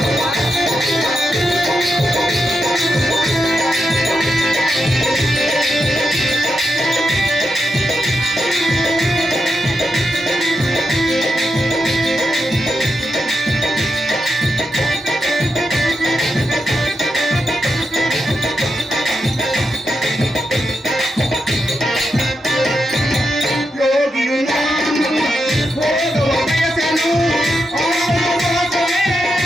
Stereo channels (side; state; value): both; normal; correlation 0.86